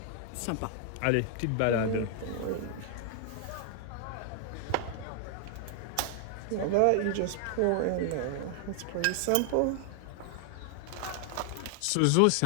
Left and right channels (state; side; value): different; both; correlation 0.00